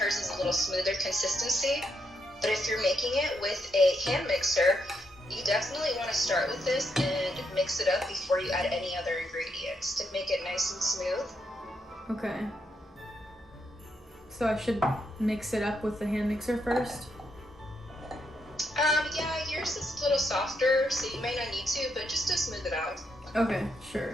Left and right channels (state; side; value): normal; both; correlation 0.79